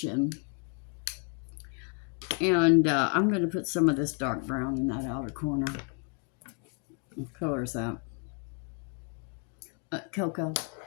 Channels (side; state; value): right; quieter; 35.3 dB